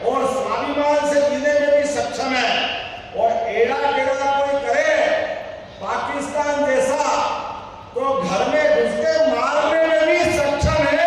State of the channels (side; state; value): both; identical; correlation 1.00